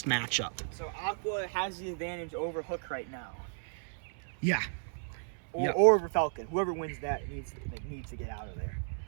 matchup. So Aqua has the advantage over Hook right now, Yeah. or over Falcon. Whoever wins that needs to get out of there.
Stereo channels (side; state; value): left; silent; 55 dB below the other